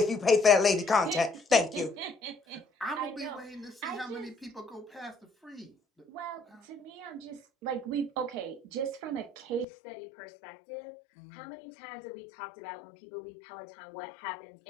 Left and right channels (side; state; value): right; drops out; at 9.7 s